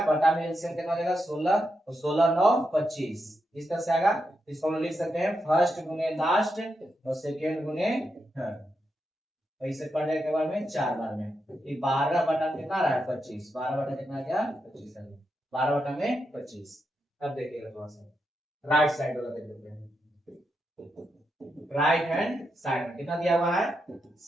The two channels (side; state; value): both; normal; correlation 0.84